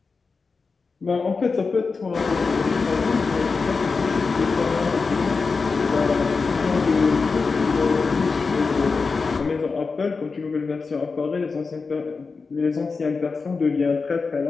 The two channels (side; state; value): right; quieter; 4.5 dB